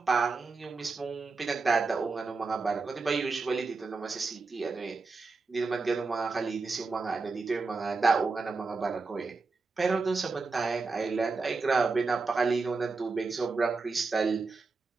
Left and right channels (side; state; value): left; quieter; 4.1 dB